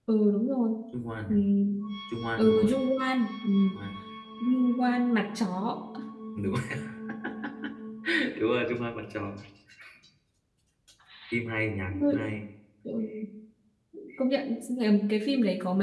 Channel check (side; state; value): both; identical; correlation 1.00